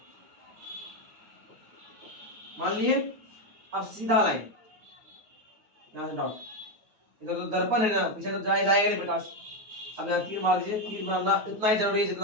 मान लिए। अब सीधा लाइन, यहाँ से डॉट, इधर तो दर्पण है ना, पीछे तो जाएगा नहीं प्रकाश। अब यहाँ तीर मार दीजिए, तीर मारना इतना ही जरूरी है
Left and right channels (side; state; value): left; late; 9.4 ms